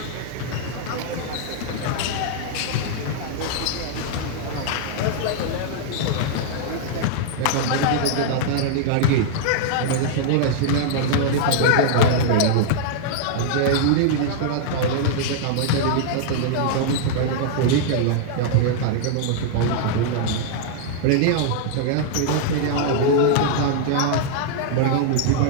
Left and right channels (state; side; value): different; both; correlation -0.01